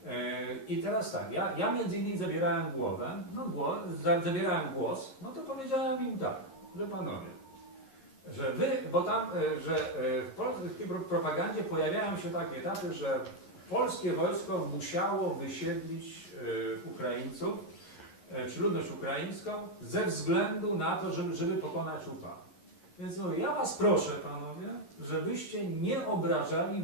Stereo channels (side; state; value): right; late; 11 ms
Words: I teraz tak, ja między innymi zabierałem głos, no to powiedziałem im tak, że panowie, że wy, bo tam, że w polskiej propagandzie pojawiają się takie etapy, że polskie wojsko musiało wysiedlić Ukraińców, czy ludność ukraińską, ze względu na to, żeby pokonać UPA. Więc no, ja was proszę, panowie, żebyście nie obrażali